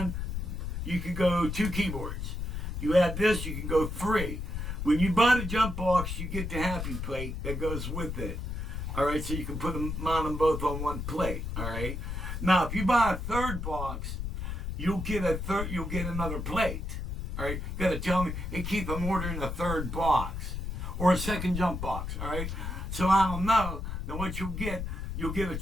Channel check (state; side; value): noise; left; rumble, 4 dB below the sound